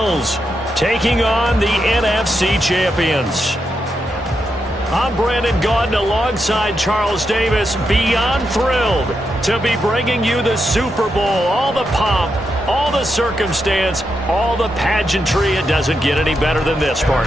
taking on the NFC champions. I'm Brandon Gaudin alongside Charles Davis, beyond thrilled to be bringing you the Super Bowl. All the pomp, all the circumstance, all the pageantry. It doesn't get any better than this,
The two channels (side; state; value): both; normal; correlation 0.84